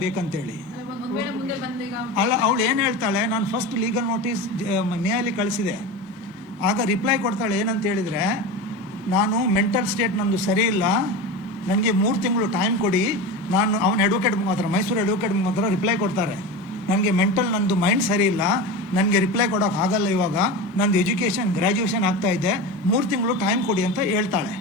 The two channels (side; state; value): both; normal; correlation 0.25